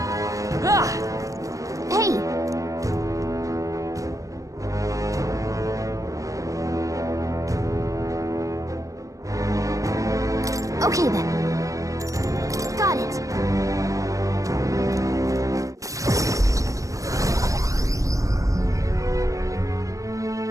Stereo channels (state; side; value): late; left; 0.16 ms